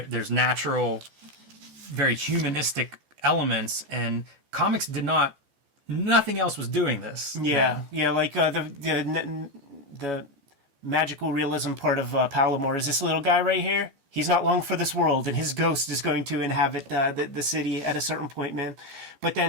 natural, very humanistic elements, and comics nothing else was doing this. Yeah, yeah, like the magical realism part of Palomar is this little guy right here. He's not long for this world, and his ghost is going to inhabit the city at a certain point, man. But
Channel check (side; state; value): left; late; 14 ms